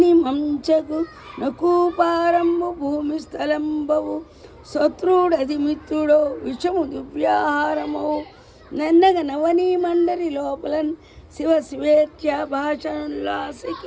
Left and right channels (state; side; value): identical; both; correlation 1.00